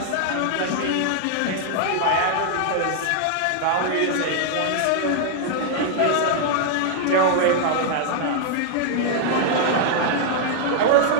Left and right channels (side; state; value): both; different; correlation -0.01